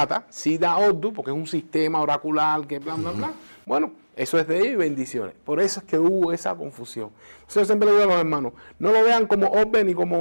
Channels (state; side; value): inverted; both; correlation -1.00